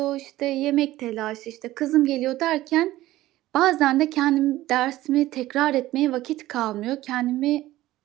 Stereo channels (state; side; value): quieter; left; 15.9 dB